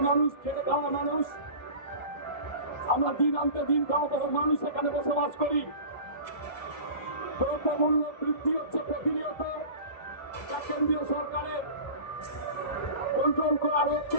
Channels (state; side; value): late; right; 1.5 ms